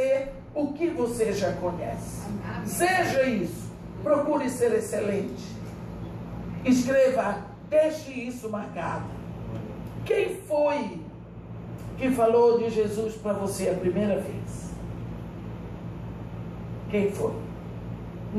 o que você já conhece. Seja isso, procure ser excelente. Escreva, deixe isso marcado. Quem foi que falou de Jesus para você a primeira vez? Quem foi?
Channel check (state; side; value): identical; both; correlation 1.00